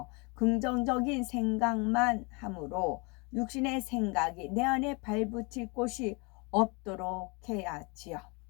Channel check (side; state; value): right; quieter; 29.9 dB